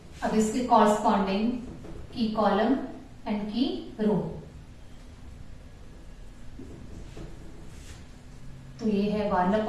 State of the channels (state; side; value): identical; both; correlation 1.00